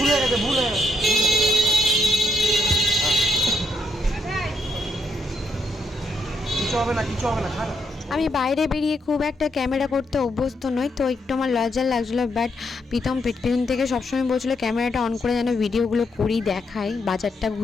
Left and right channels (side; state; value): both; normal; correlation 0.78